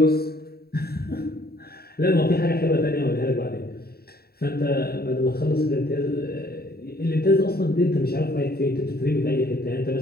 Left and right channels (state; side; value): late; right; 0.45 ms